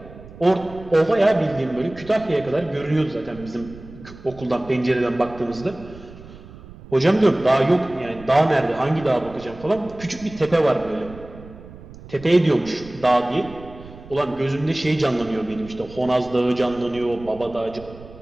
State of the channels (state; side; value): noise; right; rumble, 18 dB below the sound